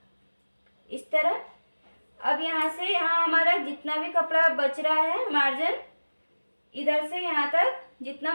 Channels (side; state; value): both; inverted; correlation -1.00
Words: इस तरह। अब यहाँ से यहाँ हमारा जितना भी कपड़ा बच रहा है मार्जिन, इधर से यहाँ तक जितना